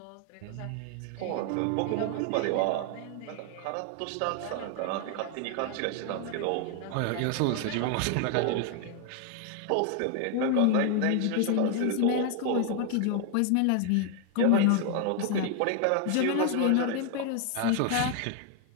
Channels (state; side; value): different; both; correlation 0.00